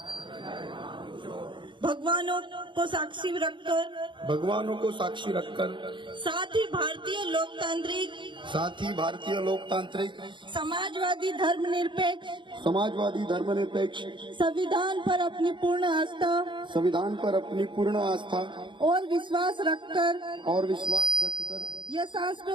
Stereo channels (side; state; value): left; late; 0.23 ms